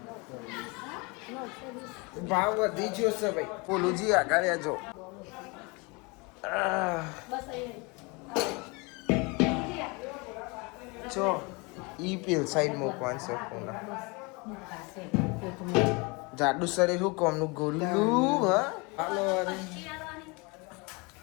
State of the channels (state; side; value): quieter; right; 28.4 dB